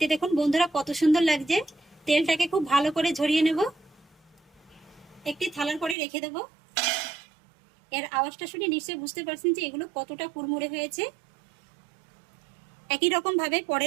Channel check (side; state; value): left; drops out; at 6.0 s